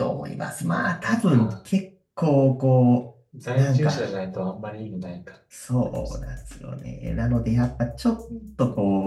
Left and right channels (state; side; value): identical; both; correlation 1.00